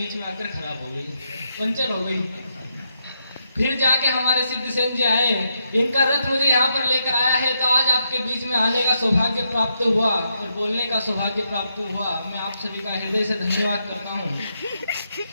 में आकर खराब हो गई, पंचर हो गई। फिर जाके हमारे सिद्धसेन जी आए, इनका रथ मुझे यहाँ पर लेकर आया है, तो आज आपके बीच में आने का सौभाग्य प्राप्त हुआ और बोलने का सौभाग्य प्राप्त हुआ। मैं आप सभी का हृदय से धन्यवाद करता हूँ।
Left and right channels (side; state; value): both; inverted; correlation -0.80